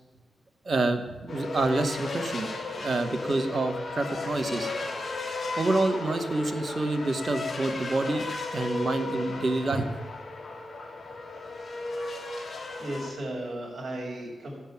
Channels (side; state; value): both; normal; correlation 0.89